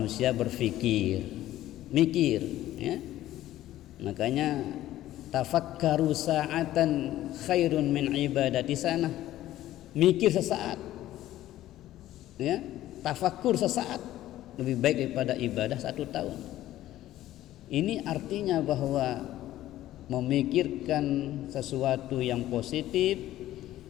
berfikir, mikir, ya. Makanya tafakkaru sa'atan khairun min ibadati sana. Mikir sesaat, ya, tafakkur sesaat lebih baik daripada ibadah 1 tahun. Ini artinya bahwa memikirkan sesuatu yang positif,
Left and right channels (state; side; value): quieter; right; 14.1 dB